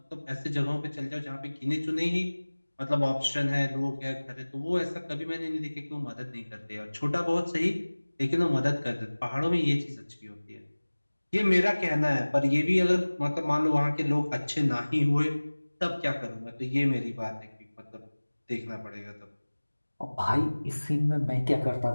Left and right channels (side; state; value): both; inverted; correlation -1.00